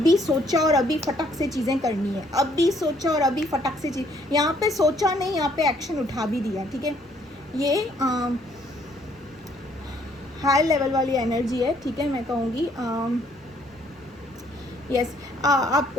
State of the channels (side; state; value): both; normal; correlation 0.65